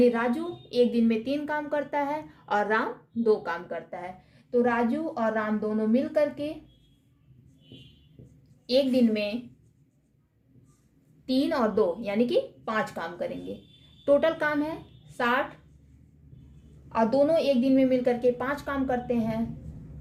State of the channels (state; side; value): identical; both; correlation 1.00